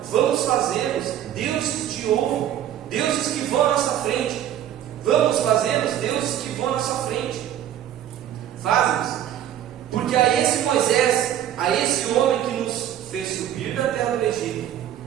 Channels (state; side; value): quieter; left; 11.2 dB